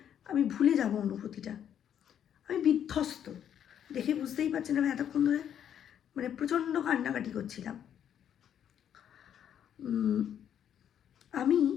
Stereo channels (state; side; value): quieter; right; 9.4 dB